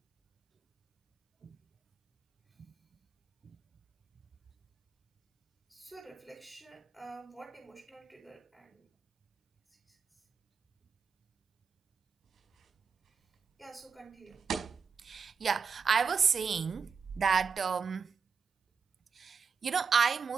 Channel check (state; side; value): quieter; left; 5.8 dB